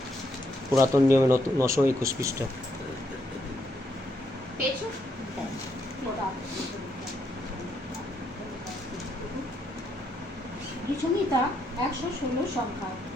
পুরাতন নিয়মে 921 পৃষ্ঠা। গীতসংহিতা 116 সংখ্যা।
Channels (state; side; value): normal; both; correlation 0.75